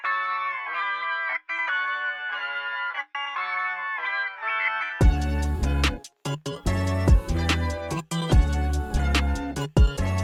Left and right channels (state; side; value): identical; both; correlation 1.00